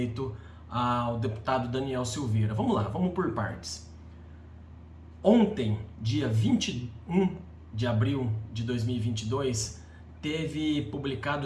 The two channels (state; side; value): identical; both; correlation 1.00